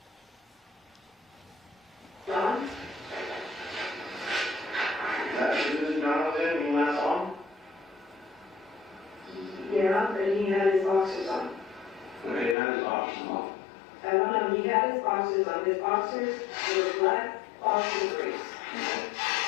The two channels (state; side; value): drops out; right; at 12.6 s